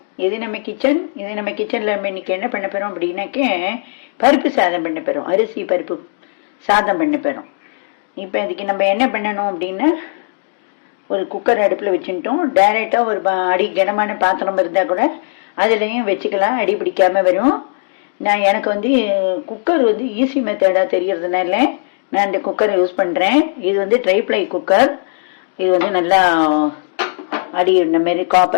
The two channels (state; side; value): silent; right; digital silence